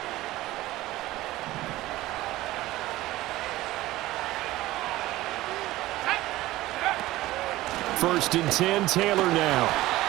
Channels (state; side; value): quieter; left; 17.0 dB